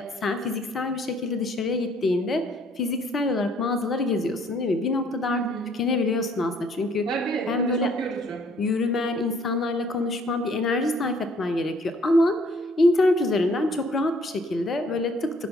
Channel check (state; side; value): normal; both; correlation 0.61